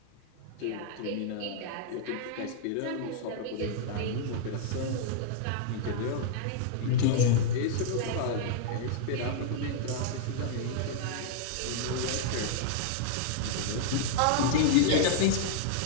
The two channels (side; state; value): both; different; correlation -0.01